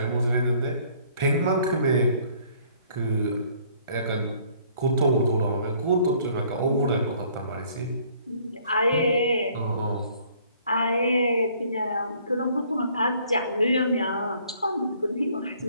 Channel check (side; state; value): both; inverted; correlation -0.60